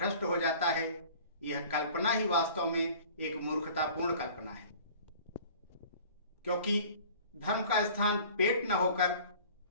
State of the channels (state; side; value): inverted; both; correlation -0.46